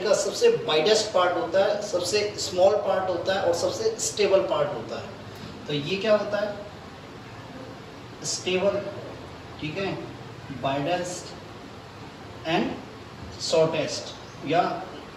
का सबसे वाइडेस्ट पार्ट होता है, सबसे स्मॉल पार्ट होता है और सबसे स्टेबल पार्ट होता है। तो ये क्या होता है? स्टेबल। ठीक है। वाइडेस्ट एंड शॉर्टेस्ट, या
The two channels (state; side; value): identical; both; correlation 1.00